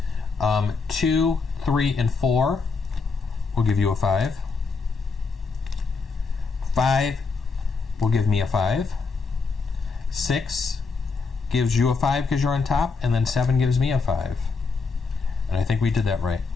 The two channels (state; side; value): quieter; right; 4.6 dB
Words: 2, 3, and 4 will give you a 5. 5 will give me a 5. 6 gives you a 5 because you're on top, and then 7 gives me a 5. And I think we did that right.